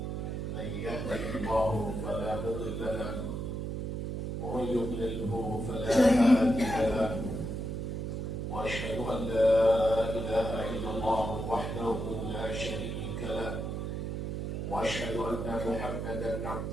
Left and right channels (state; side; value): noise; right; hum, 3 dB below the sound